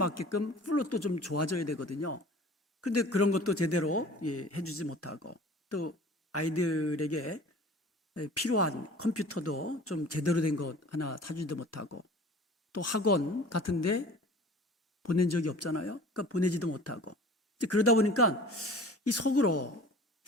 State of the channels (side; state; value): both; normal; correlation 0.43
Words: 플룻도 좀 좋아져야 되거든요. 그런데 그런 것도 제대로 해주지 못하고 또 아이들에게 필요한 컴퓨터도 좀 제대로 된 것 하나 사주지도 못하고 또 학원 같은데 보낸 적이 없잖아요. 그러니까 보내지도 못하고 그러다 보니까 이 속으로